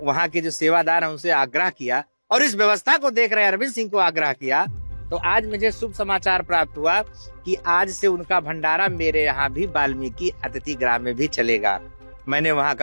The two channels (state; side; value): inverted; both; correlation -1.00